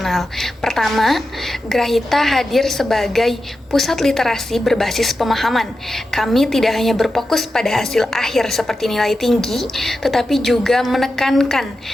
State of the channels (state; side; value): normal; both; correlation 0.91